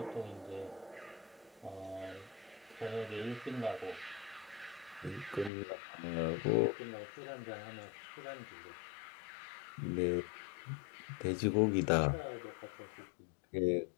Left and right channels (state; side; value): drops out; right; at 5.5 s